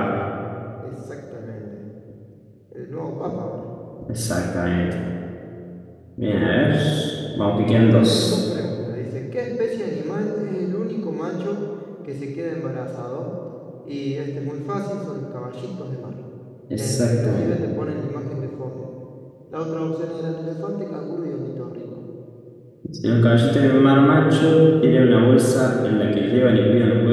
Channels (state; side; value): identical; both; correlation 1.00